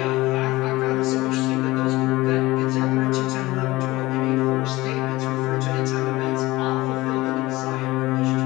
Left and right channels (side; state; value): right; quieter; 19.5 dB